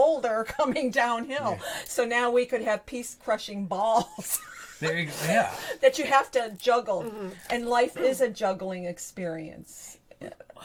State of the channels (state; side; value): identical; both; correlation 1.00